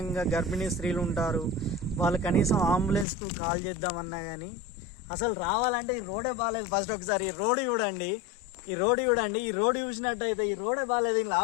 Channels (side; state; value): right; drops out; at 3.1 s